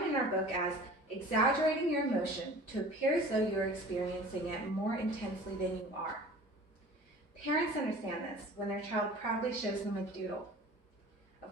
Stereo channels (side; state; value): both; normal; correlation 0.43